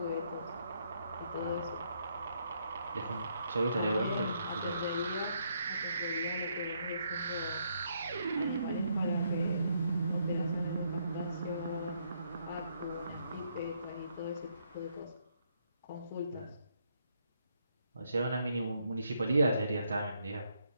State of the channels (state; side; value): inverted; both; correlation -0.74